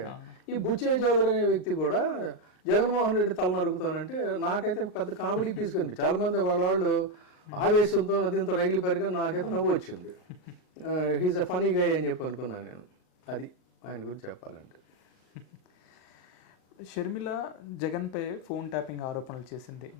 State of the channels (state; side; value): late; right; 38 ms